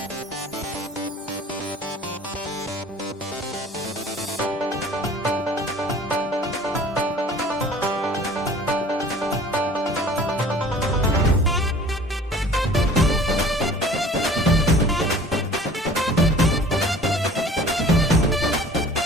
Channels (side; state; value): both; normal; correlation 0.47